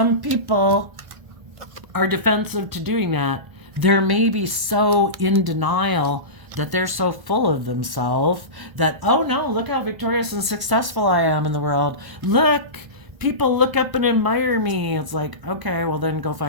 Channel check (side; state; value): left; late; 1.1 ms